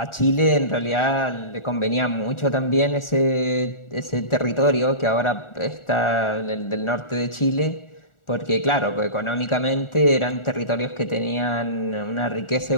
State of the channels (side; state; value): right; late; 1.4 ms